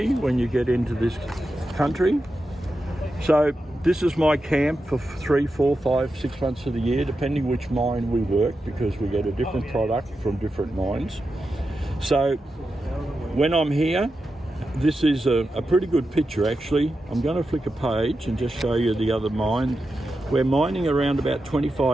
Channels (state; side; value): normal; both; correlation 0.89